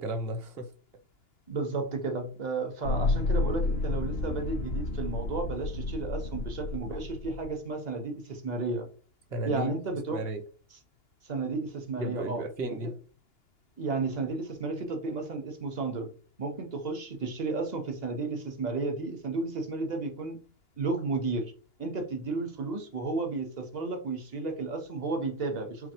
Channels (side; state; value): right; late; 2.9 ms